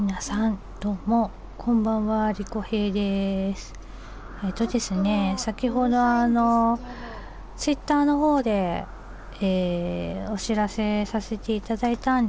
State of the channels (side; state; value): both; identical; correlation 1.00